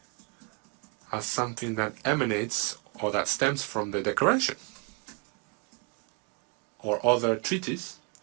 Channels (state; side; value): quieter; left; 32.4 dB